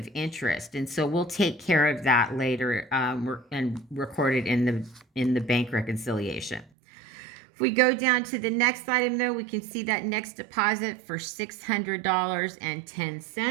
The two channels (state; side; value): drops out; left; at 6.7 s